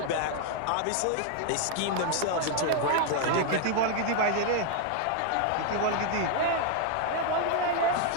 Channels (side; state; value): both; different; correlation 0.00